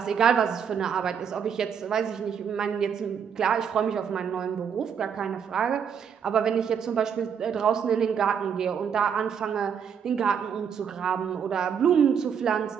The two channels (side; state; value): left; quieter; 7.4 dB